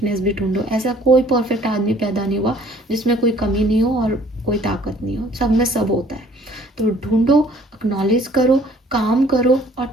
भी ढूंढो। ऐसा कोई परफेक्ट आदमी पैदा नहीं हुआ जिसमें कोई कमी नहीं हो और कोई ताकत नहीं हो, सब में सब होता है। तो ढूंढो, एक्नॉलेज करो, काम करो और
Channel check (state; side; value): normal; both; correlation 0.56